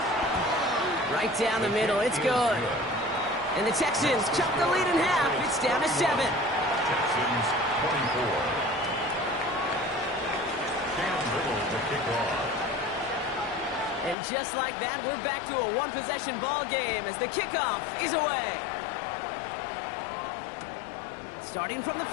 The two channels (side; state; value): right; drops out; at 14.2 s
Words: Right down the middle, it's good. And the Texans chop the lead in half. It's down to 7. Texans 24. Cam Little to kick off. And just like that, we're back to a one-possession ball game as the kickoff is away. Starting from the